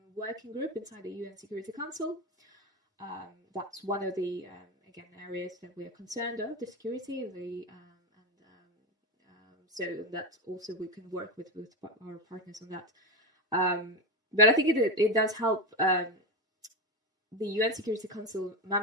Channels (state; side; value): normal; both; correlation 0.16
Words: working group inside the UN Security Council. That's one of the areas that we are concerned of, the security, so that also we can work with our partners on that. But I think it does help the UN Security Council